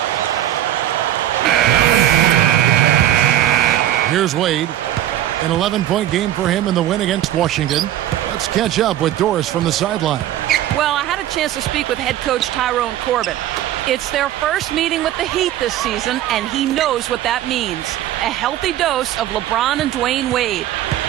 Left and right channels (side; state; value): left; quieter; 12.9 dB